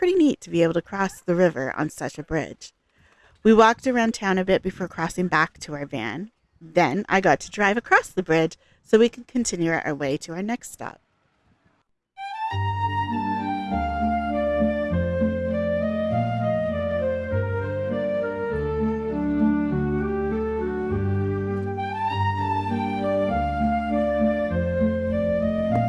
neat to be able to cross the river on such a bridge. We walked around town a bit before crossing back to our van. Then I got to drive across the bridge so we could continue our way to our next stop.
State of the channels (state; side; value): identical; both; correlation 1.00